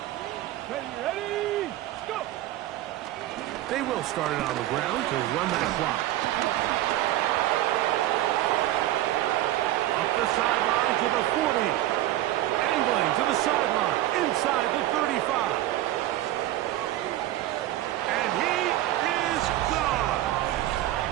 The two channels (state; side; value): quieter; left; 14.6 dB